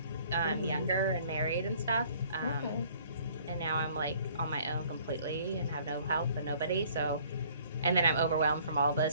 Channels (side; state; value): both; inverted; correlation -0.57